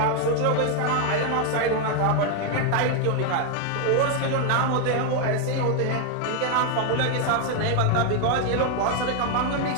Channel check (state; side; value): different; both; correlation 0.01